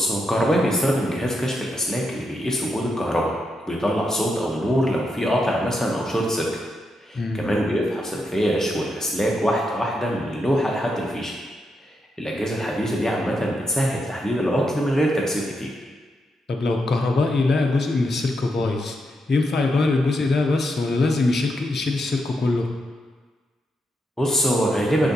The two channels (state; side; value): normal; both; correlation 0.83